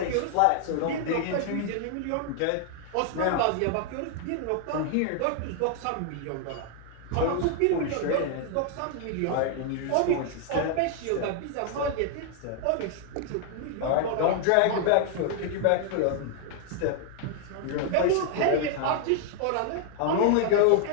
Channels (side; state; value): both; different; correlation 0.00